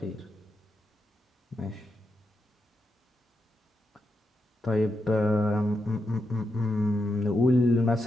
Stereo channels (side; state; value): both; normal; correlation 0.85